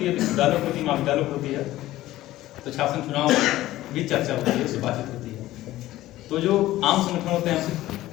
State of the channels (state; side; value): quieter; right; 15.6 dB